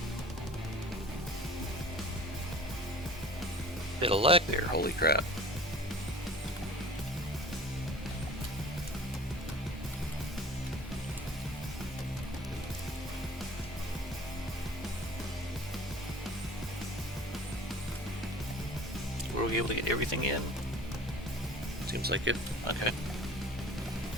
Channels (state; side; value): normal; both; correlation 0.42